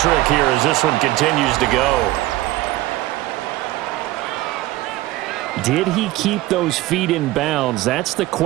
here as this one continues to go. Did he keep those feet in bounds? That's the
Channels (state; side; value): quieter; left; 17.2 dB